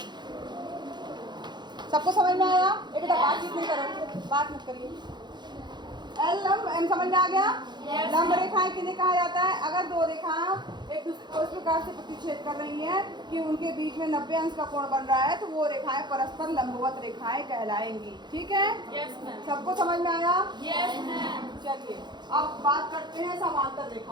सबको समझ में आया? एक बातचीत नहीं करो, बात मत करिए। एल लंब एम समझ में आ गया? लंब रेखाएं किन्हें कहा जाता है? अगर दो रेखाएं एक दूसरे को इस प्रकार से प्रतिच्छेद कर रही हैं कि उनके बीच में 90 अंश का कोण बन रहा है, तो वो रेखाएं परस्पर लंबवत रेखाएं कहलाएंगी। ठीक है? Yes ma'am. सबको समझ में आया? Yes ma'am. चलिए अब बात करते हैं समांतर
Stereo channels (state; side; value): late; left; 0.21 ms